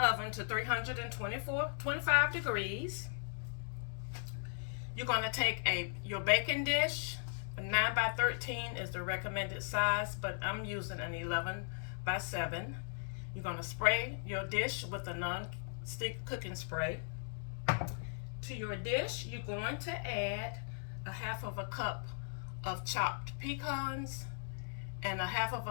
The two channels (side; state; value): right; silent; digital silence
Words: oven to 325 degrees. You're going to take your baking dish. A 9 by 13 is the recommended size, but I'm using an 11 by 7. You're going to spray your dish with a non-stick cooking spray. To your dish, you're going to add a half of a cup of chopped pecans and a half of